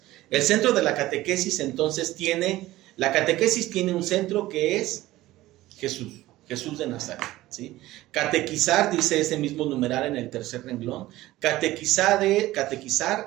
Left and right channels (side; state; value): left; quieter; 16.7 dB